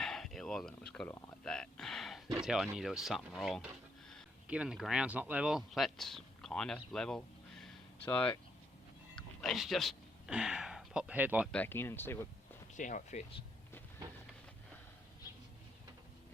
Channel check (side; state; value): both; normal; correlation 0.75